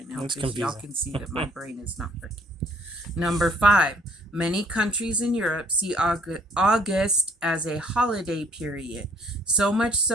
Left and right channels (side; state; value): both; normal; correlation 0.60